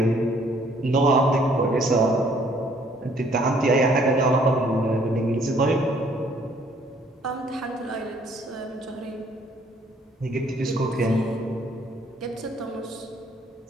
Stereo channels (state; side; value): normal; both; correlation 0.62